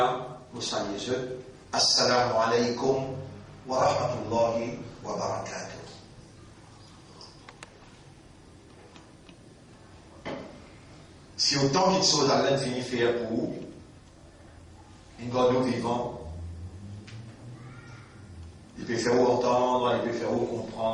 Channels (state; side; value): identical; both; correlation 1.00